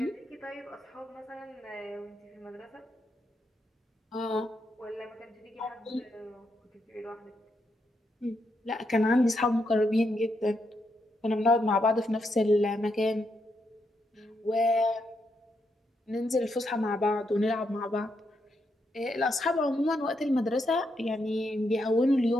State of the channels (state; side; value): normal; both; correlation 0.80